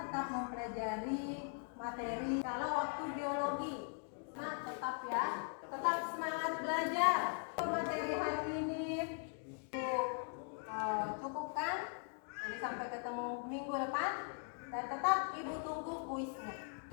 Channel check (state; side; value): silent; right; 51 dB below the other